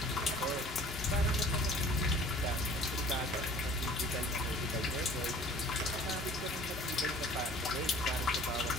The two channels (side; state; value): both; normal; correlation 0.49